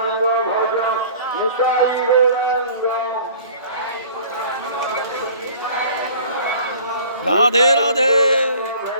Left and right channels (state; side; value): inverted; both; correlation -0.48